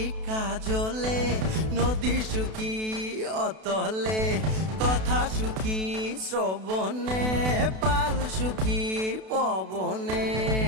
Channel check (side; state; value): left; late; 32 ms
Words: কাজলে, নদী সুখী অতলে, কথা সুখী শ্রবণে, পাল সুখী পবনে,